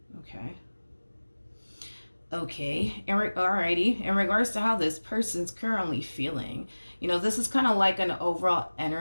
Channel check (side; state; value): both; inverted; correlation -1.00